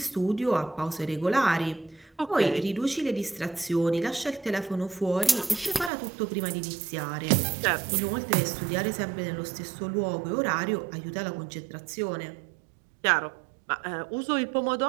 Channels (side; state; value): left; drops out; at 5.9 s